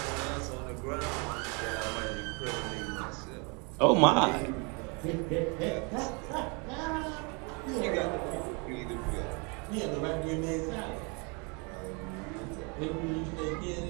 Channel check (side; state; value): left; quieter; 32.3 dB